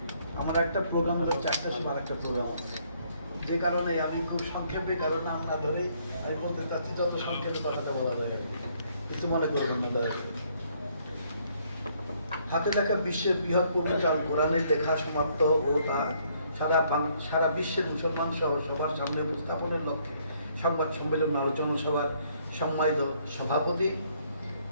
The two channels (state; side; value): inverted; both; correlation -0.67